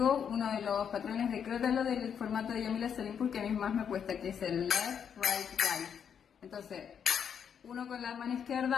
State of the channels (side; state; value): right; quieter; 7.7 dB